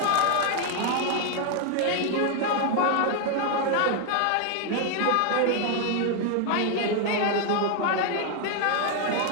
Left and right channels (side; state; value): both; different; correlation 0.00